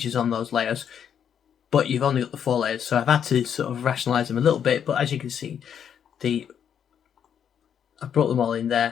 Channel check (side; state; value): right; quieter; 8.4 dB